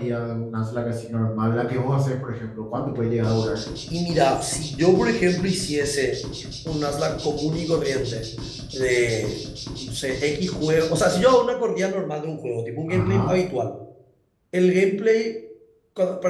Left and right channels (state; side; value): identical; both; correlation 1.00